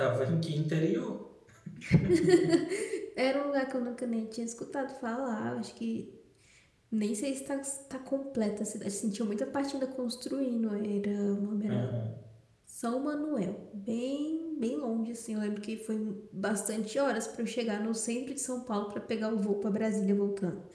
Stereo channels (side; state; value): both; identical; correlation 1.00